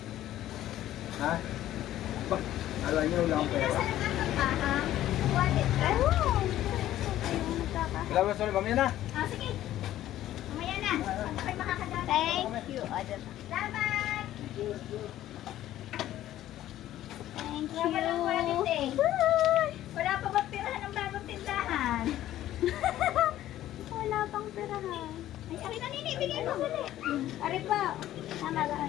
Ha? Ba? Alam niyo, wala akong pera. Nasa lang pa ha? Wallet ka? Wala mo sorry, mamaya na. Ah, sige. Mamaya na. Pag makakadala. Thank you. Salamat. Thank Wala pa lang wallet eh. Wala pa ba pirahan ng bagong tindahan? Wala pang perahan. Ay, akin na nini, bigyan mo ulit. Ari pa. Tama ba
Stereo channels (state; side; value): quieter; right; 13.3 dB